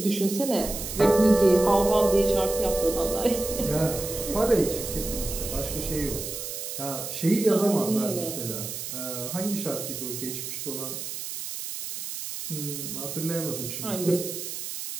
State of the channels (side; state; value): right; noise; hiss, 7 dB below the sound